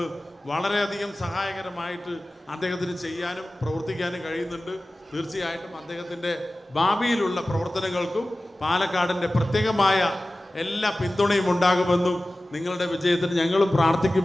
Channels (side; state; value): both; normal; correlation 0.96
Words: വളരെയധികം സഹായകരമായിട്ട് അദ്ദേഹത്തിന് ചെയ്യാനും പ്രവർത്തിക്കാനും കഴിയുന്നുണ്ട്. തീർച്ചയായിട്ടും അദ്ദേഹത്തിൻ്റെ ഭാവിയിലുള്ള പ്രവർത്തനങ്ങൾക്കും പാലക്കാടിൻ്റെ പ്രത്യേകമായ എല്ലാ പിന്തുണയും ഉണ്ടാകുമെന്നും നിങ്ങളുടെ വിജയത്തിന് ഞങ്ങളും